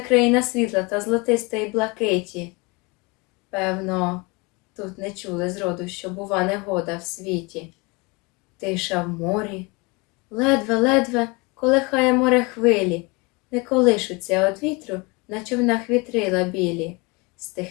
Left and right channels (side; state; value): right; quieter; 27.3 dB